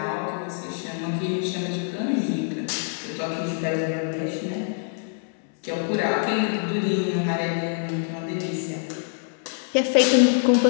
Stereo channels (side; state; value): right; silent; 62 dB below the other